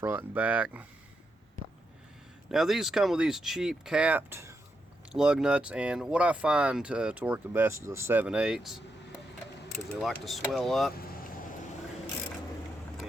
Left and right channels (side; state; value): both; normal; correlation 0.83